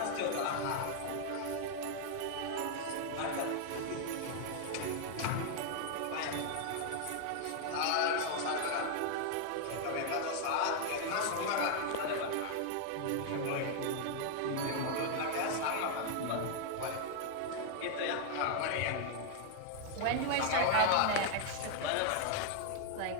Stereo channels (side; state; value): both; different; correlation 0.00